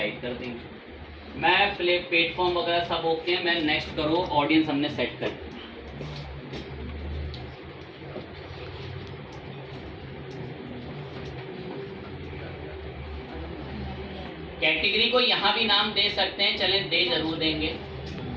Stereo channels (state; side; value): identical; both; correlation 1.00